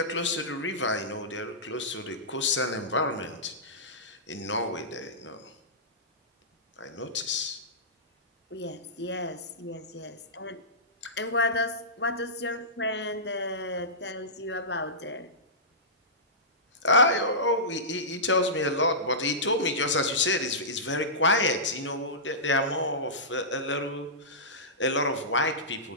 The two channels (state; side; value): normal; both; correlation -0.18